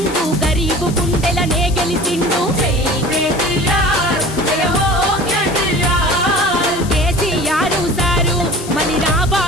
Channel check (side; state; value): left; noise; hiss, 15 dB below the sound